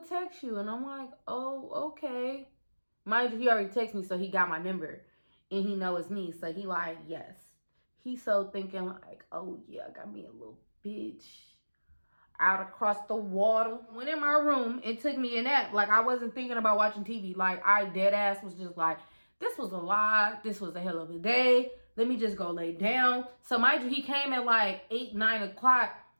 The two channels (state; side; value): inverted; both; correlation -1.00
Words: text you. And I'm like, oh, okay. Mind you, he already texted me, so he got my number. And he know it's me, so he like, yes. He so thinking like, oh yeah, I got me a little bitch out across the water. Went in my room and took me a nap. Like, I wasn't thinking about watching TV. Like, I dead ass was just like, this was a lie. This was a hell of a day. Let me just go lay down. So mind you, he came at like 8, 9 o'clock.